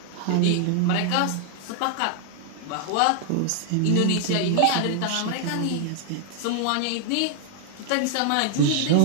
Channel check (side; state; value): both; different; correlation 0.00